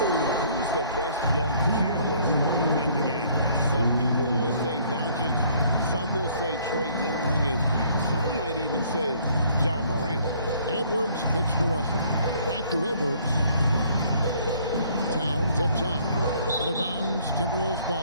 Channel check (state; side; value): inverted; both; correlation -0.61